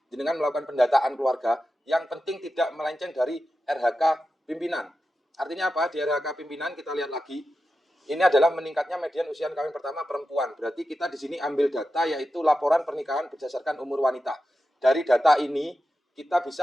jenengan melakukan pendataan keluarga, yang penting tidak melenceng dari RHK pimpinan. Artinya apa? Di RHK pimpinan kita lihat lagi, ini adalah meningkatnya median usia kawin pertama perempuan. Berarti kita di sini ambil data yaitu laporan pernikahan berdasarkan umur wanita. Dari data ini kita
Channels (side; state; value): both; normal; correlation 0.91